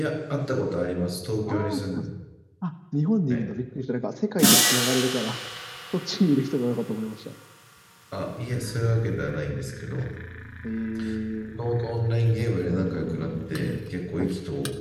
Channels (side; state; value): both; identical; correlation 1.00